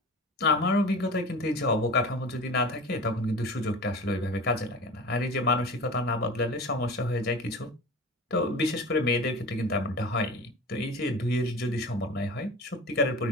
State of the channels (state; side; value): normal; both; correlation 0.35